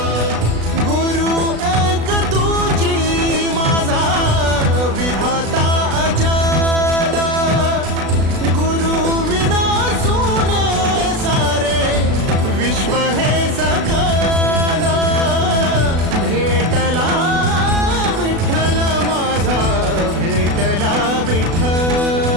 गुरु एक तुझी माझा विधाता अचल गुरु विना सुने सारे विश्व हे सकल भेटला विठ्ठल माझा भेटला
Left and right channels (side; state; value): left; late; 36 ms